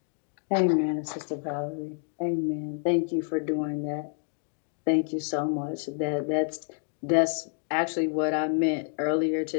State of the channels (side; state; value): right; silent; 59 dB below the other